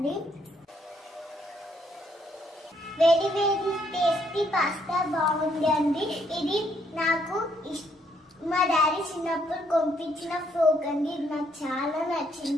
వేడి వేడి టేస్టీ పాస్తా బాగుంది అండి. ఇది నాకు మా డాడీ చిన్నప్పుడు పంపించిన ఫ్రోక్ అండి. ఇది నాకు చాలా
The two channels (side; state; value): both; normal; correlation 0.71